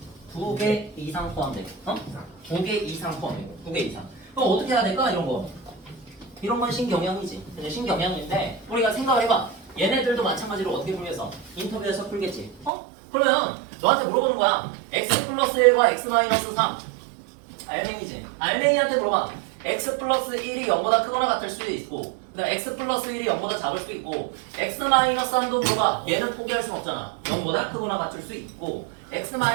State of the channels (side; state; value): left; drops out; at 12.7 s